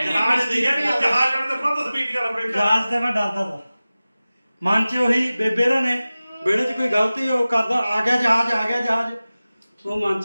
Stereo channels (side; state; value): both; inverted; correlation -0.97